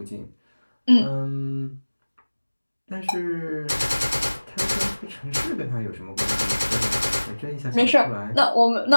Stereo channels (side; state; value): both; inverted; correlation -1.00